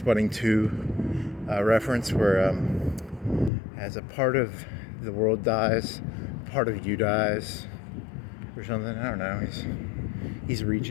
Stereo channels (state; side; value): drops out; right; at 3.5 s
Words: 2 reference where as a part of the world dies, part of you dies, or something. I don't know. He's